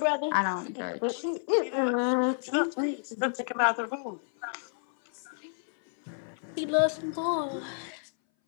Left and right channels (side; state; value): right; silent; 58 dB below the other